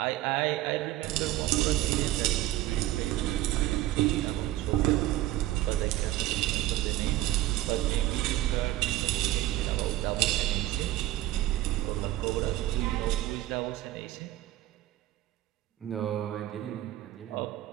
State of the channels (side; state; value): left; quieter; 15.4 dB